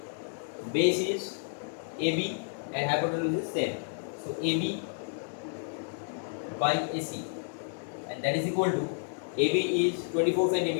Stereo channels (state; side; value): silent; right; 57 dB below the other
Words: base is AB and hypotenuse is same. So AB by AC, and that is equal to, AB is 24